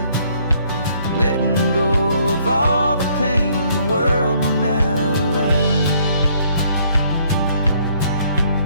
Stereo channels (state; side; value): inverted; both; correlation -0.66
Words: and letting go of all the pain the world will now allow.